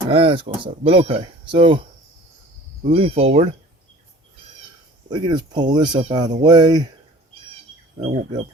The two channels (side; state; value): both; normal; correlation 0.46